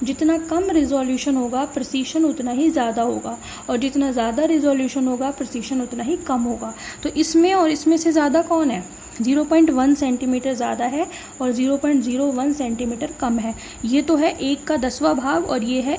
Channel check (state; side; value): identical; both; correlation 1.00